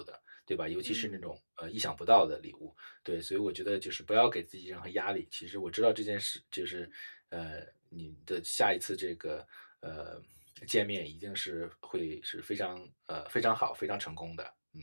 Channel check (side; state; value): both; inverted; correlation -1.00